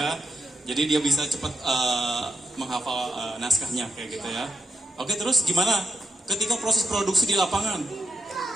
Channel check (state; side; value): normal; both; correlation 0.83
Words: Jadi dia bisa cepat menghafal naskahnya kayak gitu ya. Oke, terus gimana ketika proses produksi di lapangan?